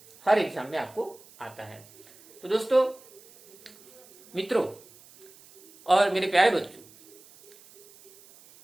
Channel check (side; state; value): right; noise; hiss, 24 dB below the sound